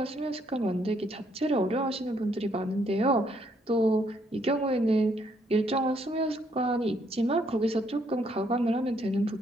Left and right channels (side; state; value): both; normal; correlation 0.70